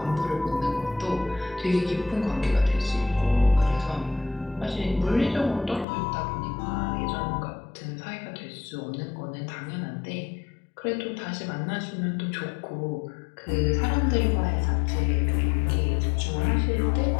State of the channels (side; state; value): right; drops out; at 5.9 s